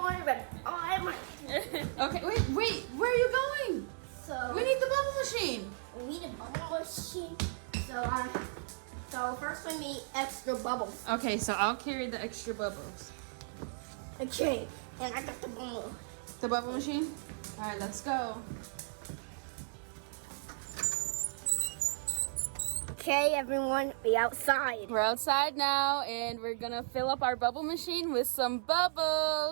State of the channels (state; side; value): silent; left; digital silence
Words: ready. I'm ready. Okay, wait. Where are you going? So We need the bubble machine. we need a bubble machine. So first we need extra bubbles. Okay, so I'll carry the extra bubbles. Okay, and I got the bubble. The bubble machine? All right, let's go. Okay, everyone, we outside. We're outside now and we're gonna fill up our bubble machine with some